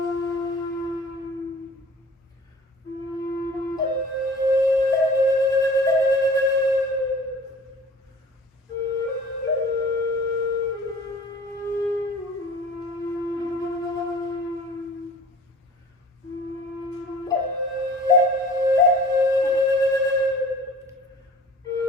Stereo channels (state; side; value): normal; both; correlation 0.44